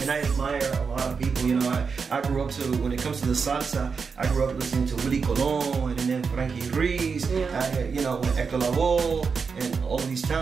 And I admire a lot of people. You know, I grew up when it comes to the salsa, I grew up listening to Willie Colon and then Frankie Ruiz, you know, Hector Lavoe, and all of these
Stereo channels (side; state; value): left; quieter; 5.4 dB